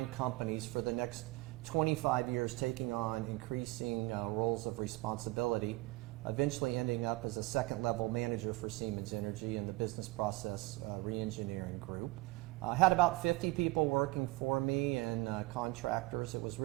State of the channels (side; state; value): left; quieter; 21.5 dB